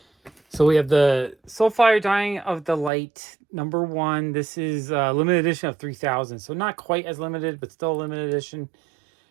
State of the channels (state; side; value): drops out; left; at 2.9 s